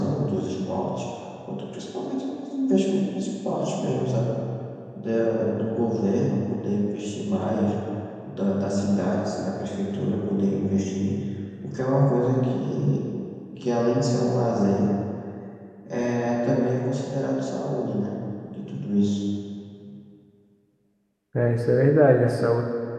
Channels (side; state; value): both; identical; correlation 1.00